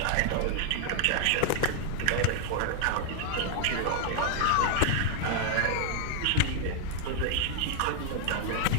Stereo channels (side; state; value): both; different; correlation 0.00